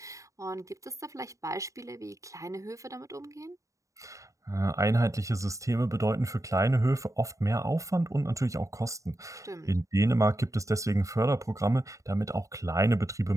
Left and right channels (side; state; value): left; late; 0.16 ms